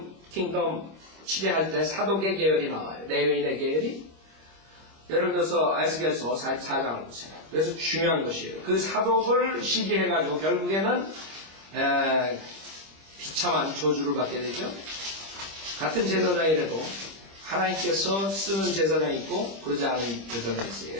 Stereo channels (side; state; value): left; late; 25 ms